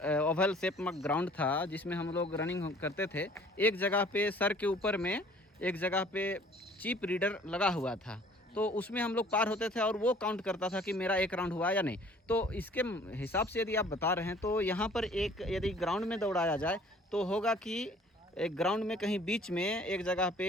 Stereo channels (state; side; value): normal; both; correlation 0.53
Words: ओवल शेप में ग्राउंड था, जिसमें हम लोग रनिंग करते थे। एक जगह पे सर के ऊपर में एक जगह पे चिप रीडर लगा हुआ था, तो उसमें हम लोग पार होते थे और वो काउंट करता था कि मेरा एक राउंड हुआ या नहीं। तो इसके हिसाब से यदि आप बता रहे हैं तो यहाँ पर एक यदि ग्राउंड में दौड़ाया जाए तो होगा कि एक ग्राउंड में कहीं बीच में एक जगह